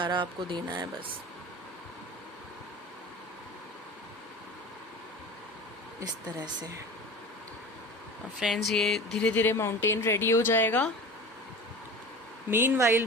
आपको देना है बस, इस तरह से। और फ्रेंड्स, ये धीरे धीरे माउंटेन रेडी हो जाएगा। मीनवाइल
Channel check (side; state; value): both; normal; correlation 0.35